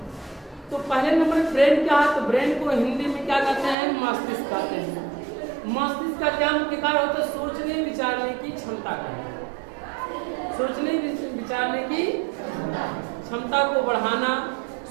तो पहले नंबर ब्रेन क्या है, तो ब्रेन को हिंदी में क्या कहते हैं, मस्तिष्क कहते हैं। मस्तिष्क का क्या मुख्य कार्य होता है, सोचने विचारने की क्षमता का, सोचने विचारने की क्षमता को बढ़ाना,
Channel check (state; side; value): drops out; left; at 3.8 s